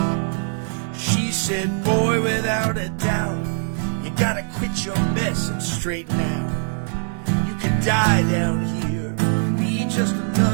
She said, boy, without a doubt, you gotta quit your mess and straighten out. You could die down here, be just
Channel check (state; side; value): silent; left; 64 dB below the other